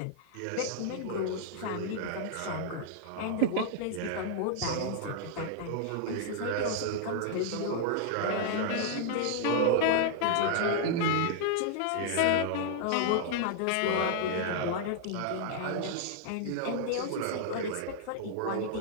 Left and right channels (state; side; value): different; both; correlation -0.01